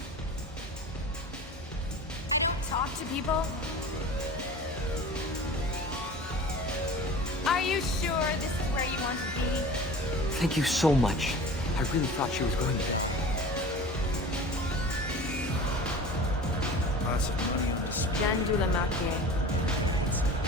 Talk to people? Are you sure this is where you want to be? Thank you so much. I really thought she was going to die. Jandula Makye.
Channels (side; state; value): both; normal; correlation 0.38